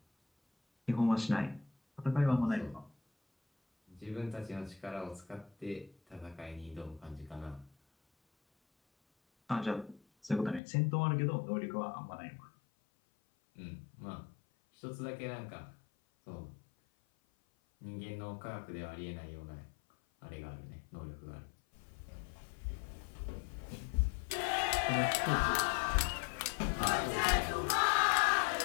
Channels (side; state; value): right; drops out; at 10.6 s